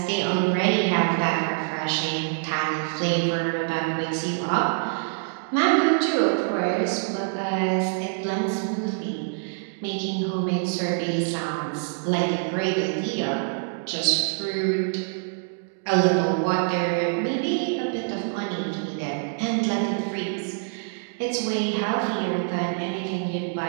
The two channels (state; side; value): silent; left; digital silence